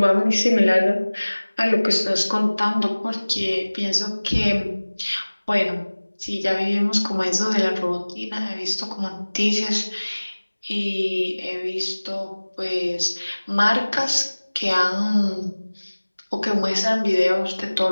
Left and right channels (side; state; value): both; inverted; correlation -1.00